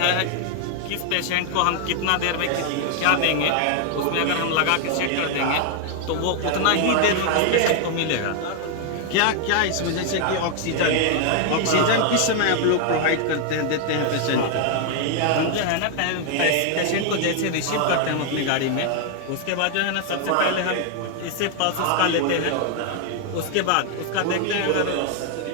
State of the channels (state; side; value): different; both; correlation 0.00